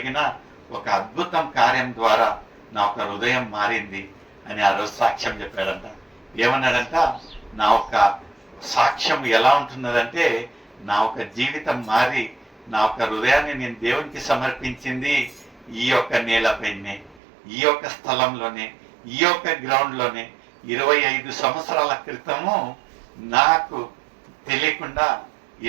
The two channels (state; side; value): drops out; left; at 17.2 s